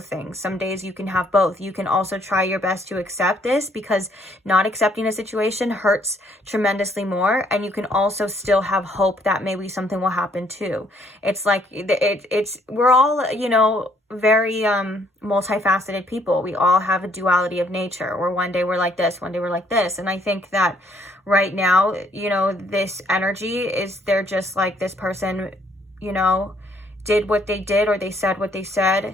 things. Some days you can have both. You can also try your best to accept this, because not accepting a situation hurts tremendously more. And you can also still have hope that maybe something will happen too. It's like, we're all, you know, very multifaceted people. We all have a duality of nature, where one day we're like this, one day we're like this. And I think that right now, you know, this energy is, they're just like, this person, you know, did what they did, or they said what they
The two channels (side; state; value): both; normal; correlation 0.66